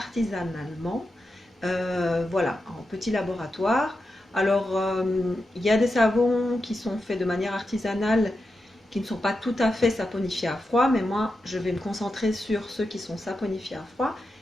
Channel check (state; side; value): normal; both; correlation 0.89